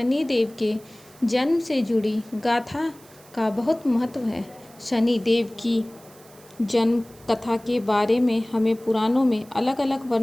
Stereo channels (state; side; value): noise; right; hiss, 25 dB below the sound